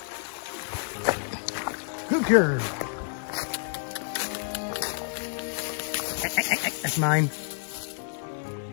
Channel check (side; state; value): right; silent; 59 dB below the other